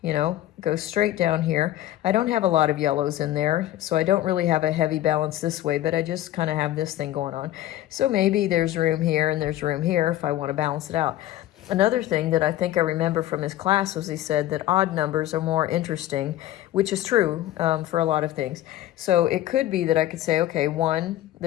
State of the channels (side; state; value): right; quieter; 13.8 dB